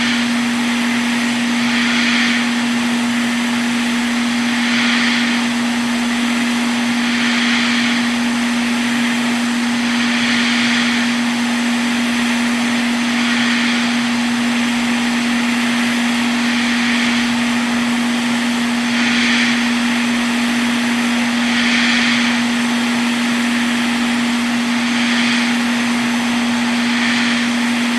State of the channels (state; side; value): identical; both; correlation 1.00